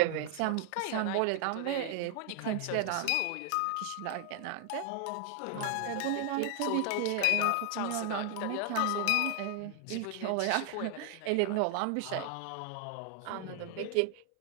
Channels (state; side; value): different; both; correlation 0.00